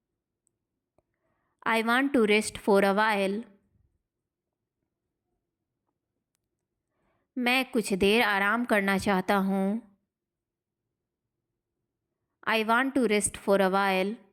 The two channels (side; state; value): both; identical; correlation 1.00